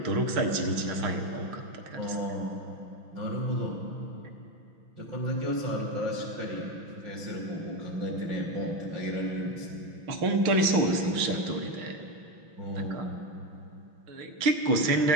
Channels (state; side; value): late; left; 6.0 ms